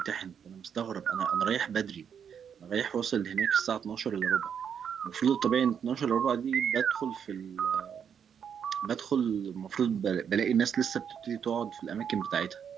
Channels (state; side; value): quieter; left; 7.7 dB